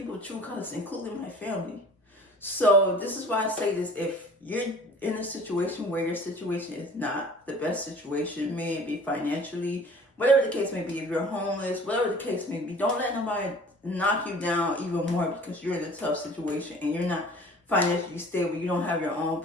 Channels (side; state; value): both; normal; correlation 0.47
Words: true colors, including my family. So this is why I say this. If you're in a situation where your situation is not the best situation, may it be financially, whatever the case may be, if you're homeless, whatever the case may be, don't let nobody knock you down even more because you're in a tough situation and you're not financially stable, you don't have your own